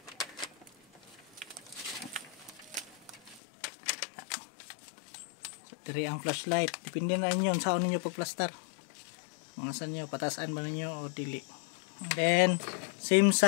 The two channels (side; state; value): right; drops out; at 3.4 s